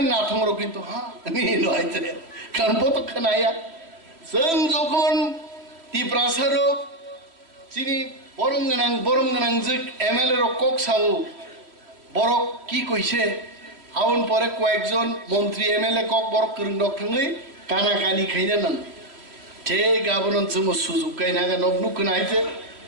নাথং র কিন্তু হ্যাঁ নি লইতে কারণ বত খনায়া जों যখন তিপ্রাসারো চিনি বরম গানাং যে এমএলএ র কক সাও বড় কি কইছে আউন পরে কয়েকজন মন্ত্রী এমএলএ কক বড় করং ডক থাঙ্গই কানা কানি খাইনা নান তে গাবনন जों সুযোগ কাইনা গা নবনু কনাইতে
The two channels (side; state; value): left; late; 3.0 ms